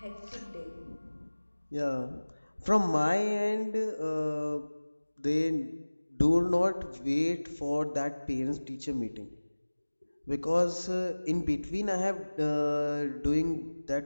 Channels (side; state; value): both; inverted; correlation -1.00